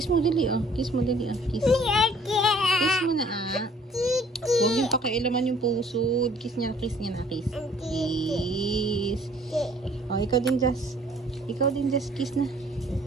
mo dali, oh. Kiss mo dali, oh. Kiss. Kiss mo na, ah. Huwag yung pakialaman yung puso. Kiss niya na, kiss. Kiss. Oh, ikaw din, Jess. Kiss na.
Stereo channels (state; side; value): normal; both; correlation 0.57